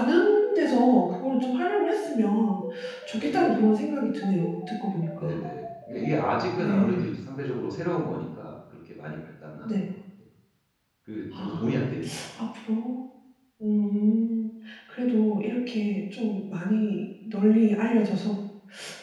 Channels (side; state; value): both; identical; correlation 1.00